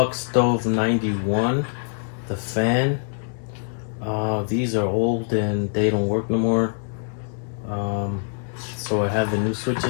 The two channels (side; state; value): right; silent; 59 dB below the other